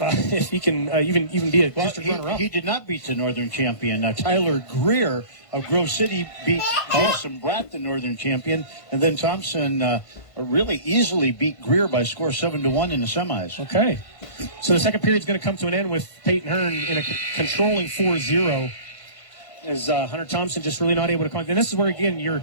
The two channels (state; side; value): late; right; 1.5 ms